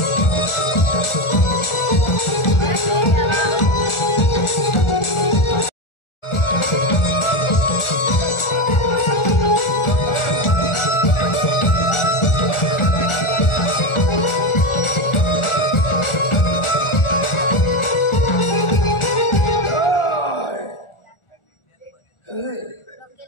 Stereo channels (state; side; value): late; right; 1.4 ms